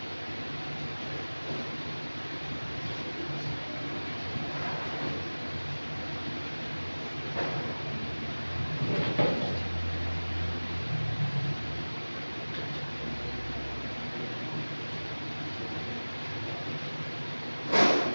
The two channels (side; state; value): both; inverted; correlation -1.00